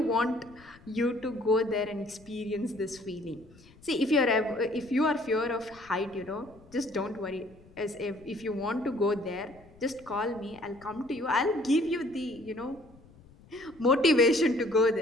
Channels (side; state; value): left; noise; rumble, 25 dB below the sound